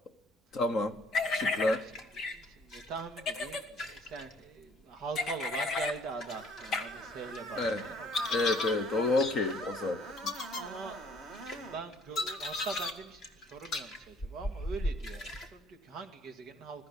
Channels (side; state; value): both; normal; correlation 0.59